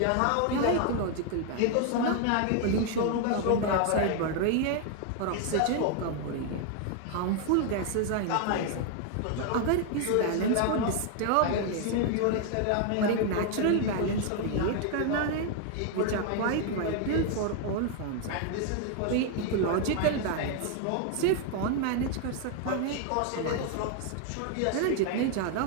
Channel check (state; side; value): different; both; correlation 0.00